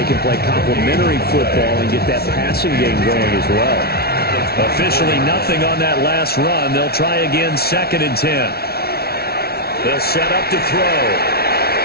can play complementary football and get that passing game going as well. Officially nothing on that last run. They'll try again, 2nd and 10. They'll set up to throw.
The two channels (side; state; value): right; late; 0.45 ms